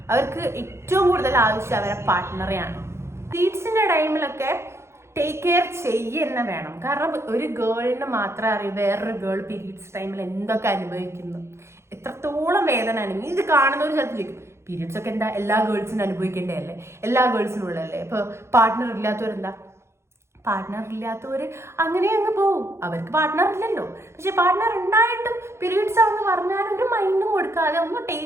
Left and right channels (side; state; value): left; late; 0.13 ms